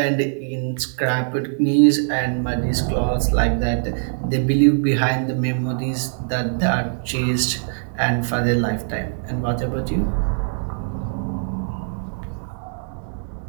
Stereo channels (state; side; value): silent; left; digital silence